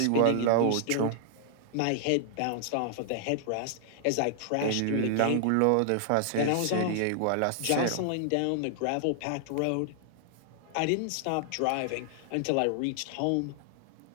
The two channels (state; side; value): different; both; correlation 0.00